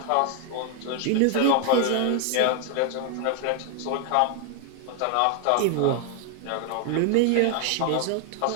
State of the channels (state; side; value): different; both; correlation 0.00